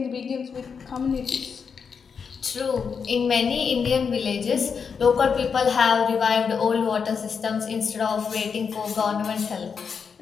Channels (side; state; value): right; quieter; 6.1 dB